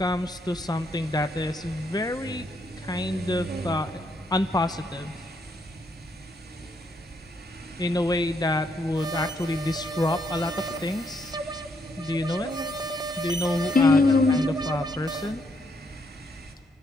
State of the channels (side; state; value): both; normal; correlation 0.75